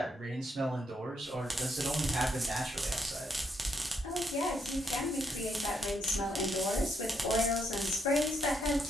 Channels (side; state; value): both; normal; correlation 0.76